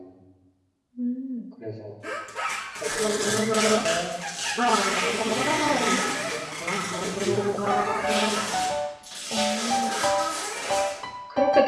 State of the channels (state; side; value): identical; both; correlation 1.00